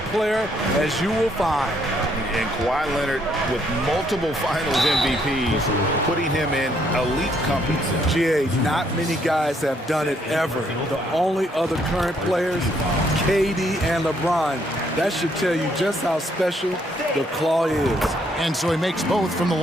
player as you will find. And Kawhi Leonard with multiple finals MVPs, putting him in elite company. GA, not many guys have done it ever. The only other current players, KD and LeBron. That should tell you just how special the Claw is. And so he makes both from the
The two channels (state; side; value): normal; both; correlation 0.70